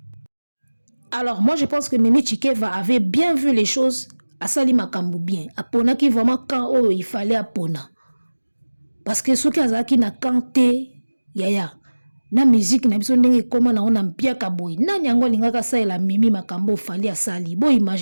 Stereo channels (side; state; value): both; inverted; correlation -1.00